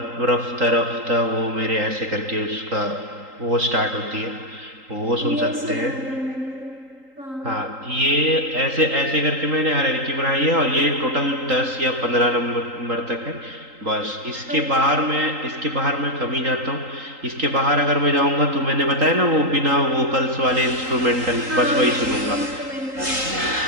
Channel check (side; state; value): left; late; 3.8 ms